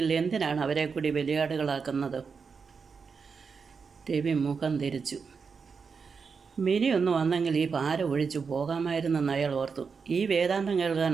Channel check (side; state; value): left; quieter; 5.5 dB